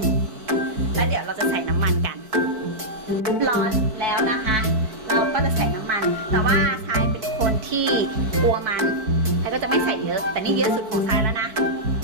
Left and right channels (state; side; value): late; left; 4.6 ms